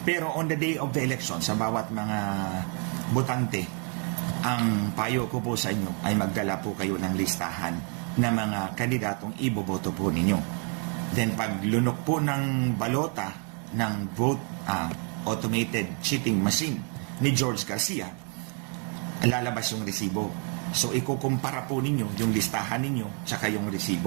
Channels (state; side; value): quieter; left; 37.7 dB